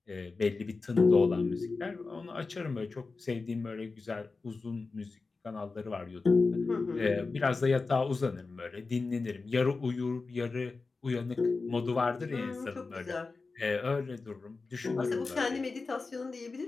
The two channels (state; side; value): quieter; right; 4.0 dB